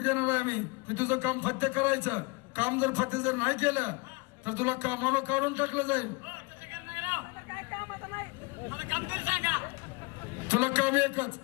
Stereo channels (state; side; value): quieter; right; 27.0 dB